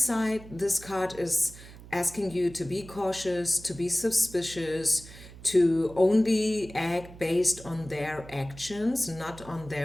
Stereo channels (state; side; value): noise; right; hum, 17 dB below the sound